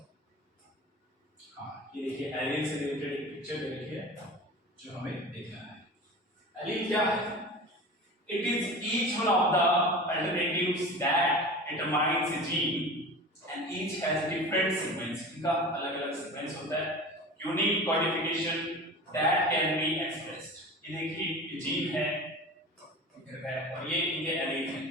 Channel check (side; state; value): both; normal; correlation 0.34